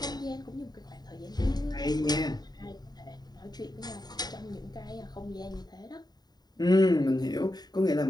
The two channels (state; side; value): late; right; 0.20 ms